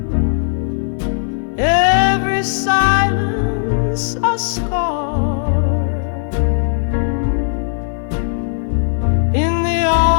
every silence a scar. In the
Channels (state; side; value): silent; right; digital silence